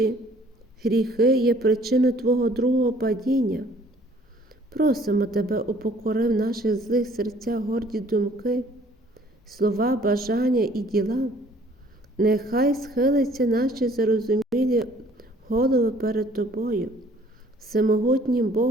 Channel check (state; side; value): normal; both; correlation 0.57